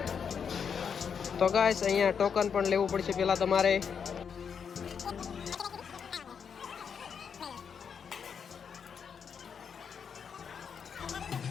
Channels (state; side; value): quieter; right; 6.9 dB